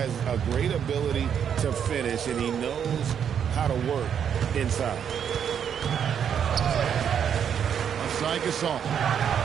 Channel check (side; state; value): left; quieter; 8.2 dB